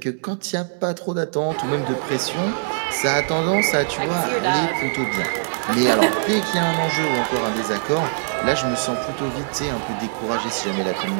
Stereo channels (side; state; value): left; silent; digital silence